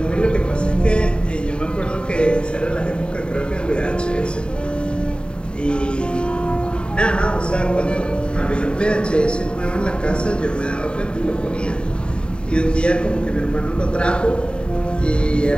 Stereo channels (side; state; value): right; late; 0.052 ms